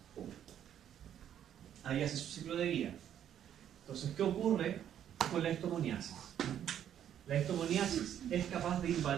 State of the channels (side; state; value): left; quieter; 10.1 dB